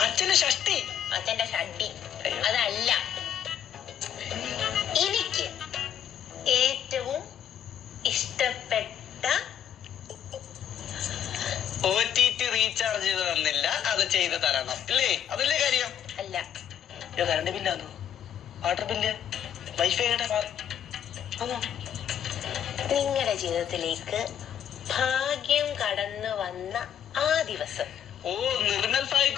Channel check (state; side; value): quieter; right; 9.5 dB